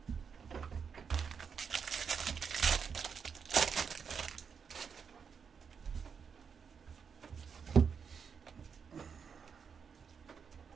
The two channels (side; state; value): left; quieter; 6.4 dB